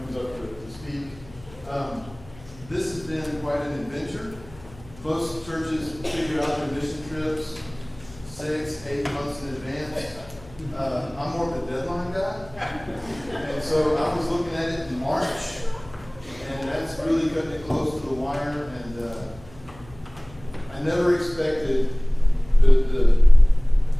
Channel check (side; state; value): left; noise; hum, 22 dB below the sound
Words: up to speak. This has been quite an adventure. Most churches figure out their mission trips 6-8 months in advance. I'm more of a deadline guy. And so I was looking at it in March, and that's really cutting it close to the wire. And I never expected the